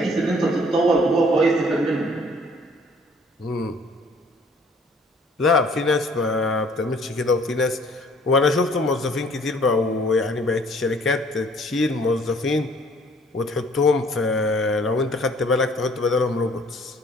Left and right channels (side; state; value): both; normal; correlation 0.57